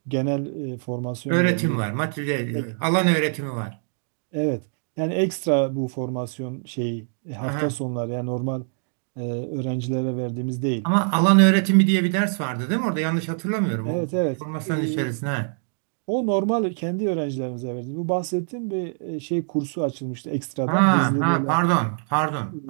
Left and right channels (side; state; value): left; silent; digital silence